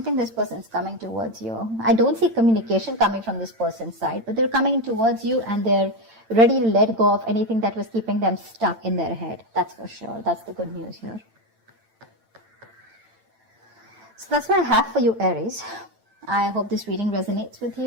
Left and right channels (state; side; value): late; left; 8.9 ms